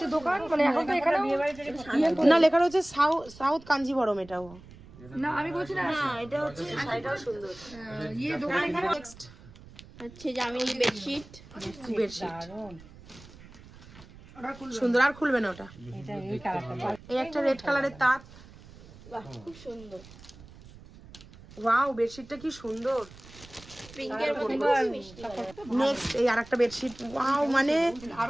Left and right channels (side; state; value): right; noise; rumble, 20 dB below the sound